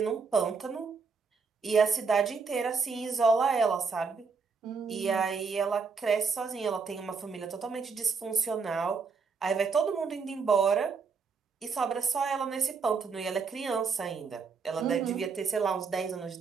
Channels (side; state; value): left; quieter; 5.1 dB